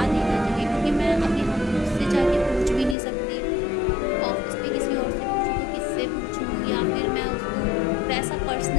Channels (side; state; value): right; drops out; at 3.0 s